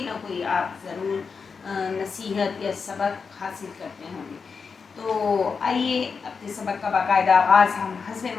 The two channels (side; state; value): right; quieter; 5.4 dB